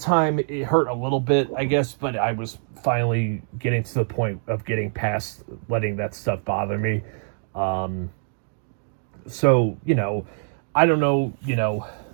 time, it hurt a little bit, I guess, but I was finally getting to the point of getting past letting that stuff bother me. So, I don't know,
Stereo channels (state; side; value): silent; left; 61 dB below the other